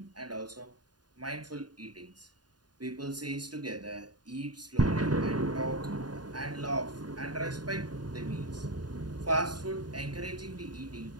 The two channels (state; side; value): late; left; 0.70 ms